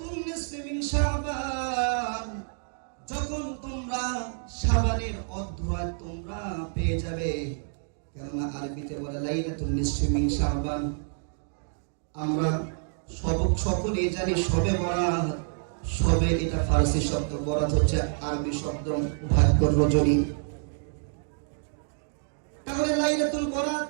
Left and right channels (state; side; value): silent; left; digital silence